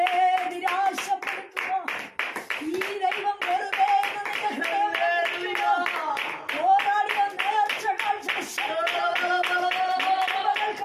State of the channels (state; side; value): identical; both; correlation 1.00